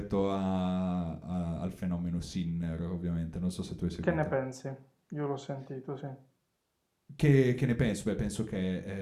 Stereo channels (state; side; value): identical; both; correlation 1.00